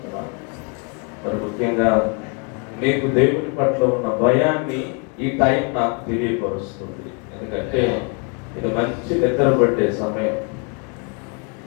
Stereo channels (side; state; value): right; quieter; 35.5 dB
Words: మరి ముఖ్యంగా మీకు దేవుని పట్ల ఉన్న భయాన్ని ఈ టైం నాకు తెలియపరుస్తుంది. ఎందుకంటే ఇది మంచి నిద్ర పట్టే సమయం.